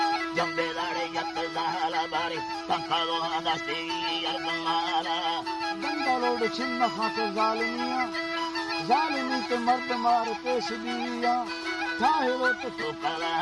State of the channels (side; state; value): both; identical; correlation 1.00